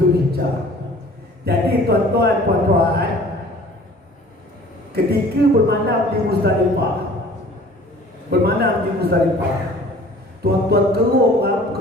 Jadi tuan-tuan, puan-puan, ketika bermalam di Muzdalifah, tuan-tuan keruk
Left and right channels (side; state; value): both; normal; correlation 0.49